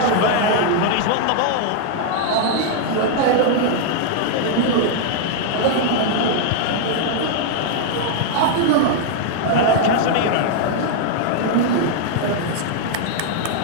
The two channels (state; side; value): different; both; correlation 0.00